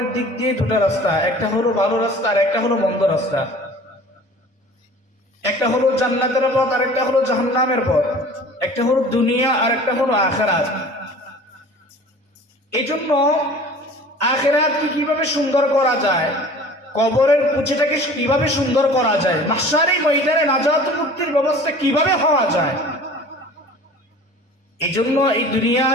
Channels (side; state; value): both; normal; correlation 0.44